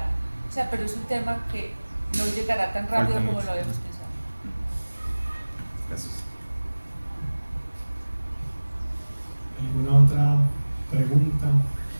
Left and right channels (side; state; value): both; inverted; correlation -1.00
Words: O sea, pero es un tema que no llegará tan rápido como lo habíamos pensado. Gracias. ¿Alguna otra pregunta?